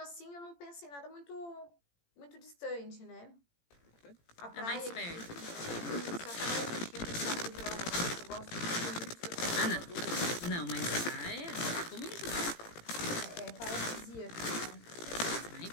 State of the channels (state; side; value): late; right; 18 ms